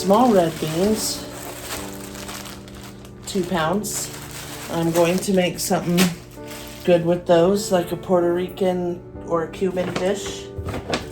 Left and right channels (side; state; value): both; identical; correlation 1.00